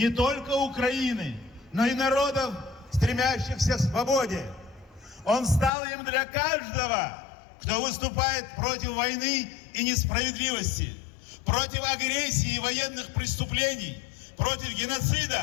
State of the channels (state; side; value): drops out; right; at 5.7 s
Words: только Украины, но и народов, стремящихся к свободе. Он стал им для каждого, кто выступает против войны и несправедливости, против агрессии и военных преступлений, против